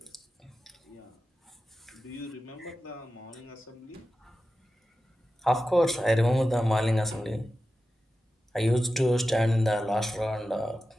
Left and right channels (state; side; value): normal; both; correlation 0.93